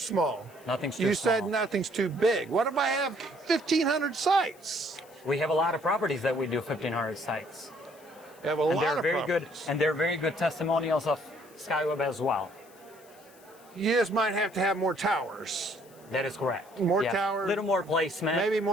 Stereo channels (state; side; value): noise; left; hiss, 26 dB below the sound